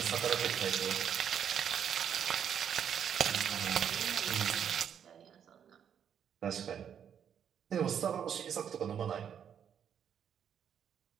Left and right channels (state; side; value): quieter; left; 8.4 dB